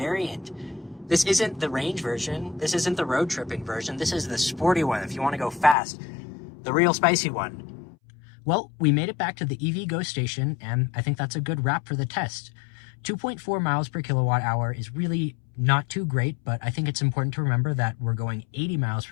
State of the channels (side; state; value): right; drops out; at 5.8 s